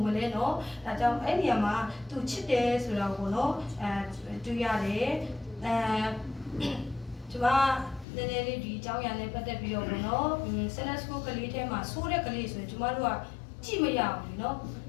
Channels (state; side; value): drops out; right; at 8.1 s